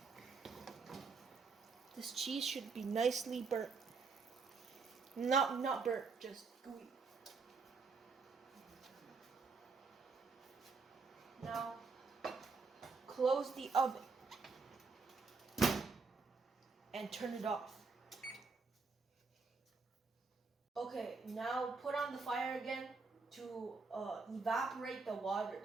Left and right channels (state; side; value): quieter; left; 4.5 dB